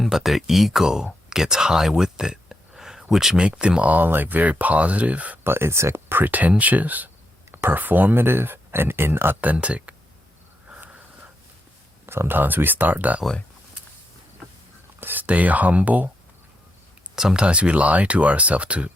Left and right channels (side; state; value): both; normal; correlation 0.82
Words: but their ego gets high with it, which make them all like very positive, but it's like pretentious, performative, and inauthentic. Sometimes we start that way. Stay humble. Sometimes we lie to ourselves to